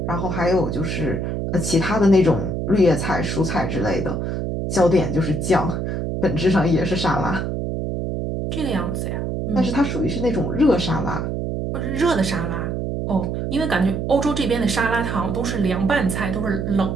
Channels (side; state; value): right; noise; hum, 2 dB below the sound